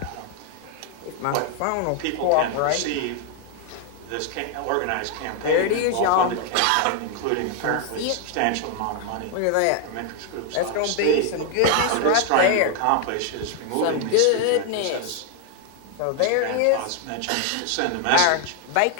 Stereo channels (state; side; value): different; both; correlation 0.00